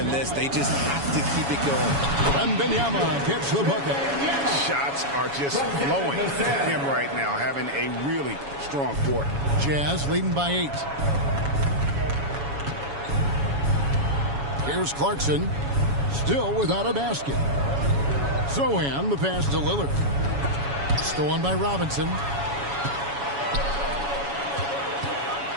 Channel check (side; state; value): left; late; 7.1 ms